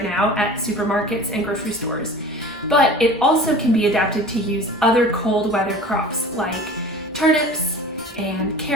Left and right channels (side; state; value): both; normal; correlation 0.40